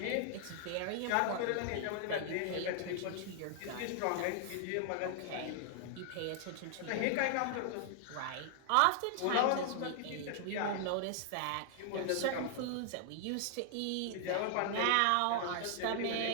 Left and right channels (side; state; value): both; different; correlation 0.00